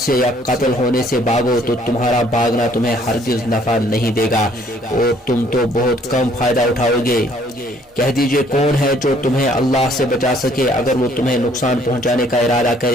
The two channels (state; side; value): normal; both; correlation 0.62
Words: سے یا قتل ہونے سے بھاگو تو تمہارا بھاگنا تمہیں ہرگز نفع نہیں دے گا اور تم تو بہت کم فائدہ اٹھاؤ گے. کہہ دیجئے کون ہے جو تمہیں اللہ سے بچا سکے اگر وہ تمہیں نقصان پہنچانے کا ارادہ